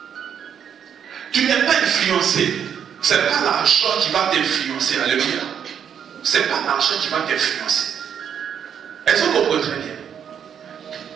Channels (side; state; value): left; quieter; 8.2 dB